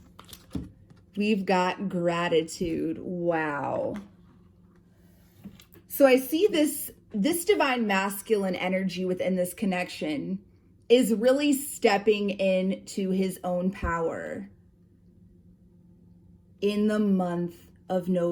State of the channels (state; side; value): identical; both; correlation 1.00